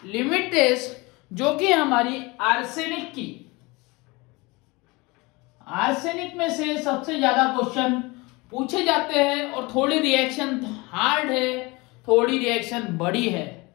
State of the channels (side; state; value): right; quieter; 24.5 dB